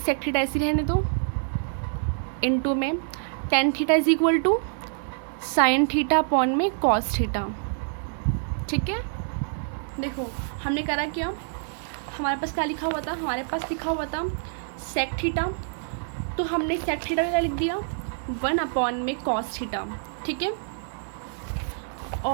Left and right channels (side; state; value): left; silent; 60 dB below the other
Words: थीटा ऐसी रहने दो, इंटू में tan theta is equal to sine theta upon में कॉस थीटा। ठीक है, देखो हमने करा क्या, हमारे पास क्या लिखा हुआ था, हमारे पास लिखा हुआ था सेक थीटा, तो हमने सेक थीटा का क्या लिख दिया, वन अपॉन में कॉस थीटा। ठीक है,